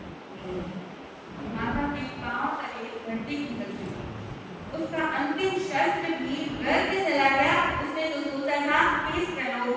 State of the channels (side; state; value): both; identical; correlation 1.00